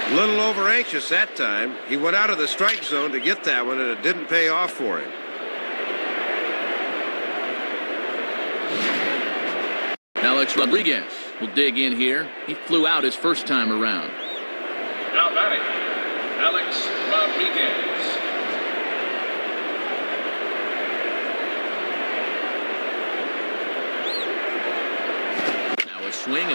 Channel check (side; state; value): both; inverted; correlation -1.00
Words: A little over anxious that time. He went out of the strike zone to get that one, and it didn't pay off for him. Alex Rodriguez will dig in here. He flew out his first time around. Now batting, Alex Rodriguez. Now a swing